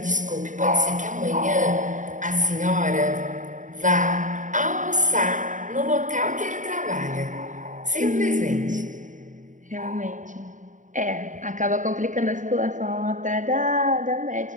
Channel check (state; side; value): late; left; 0.37 ms